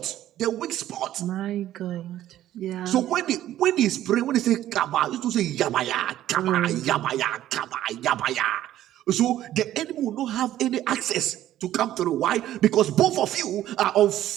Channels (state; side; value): quieter; left; 13.0 dB